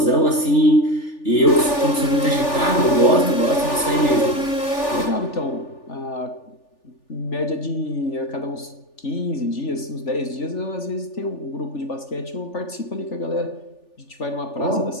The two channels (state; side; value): late; right; 3.4 ms